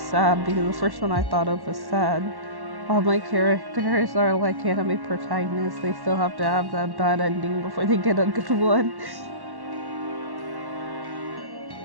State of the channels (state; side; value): late; left; 1.1 ms